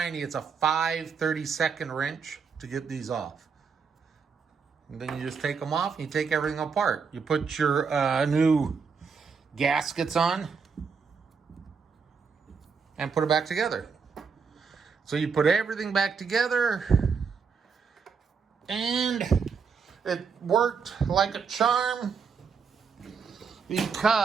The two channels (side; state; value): left; quieter; 5.7 dB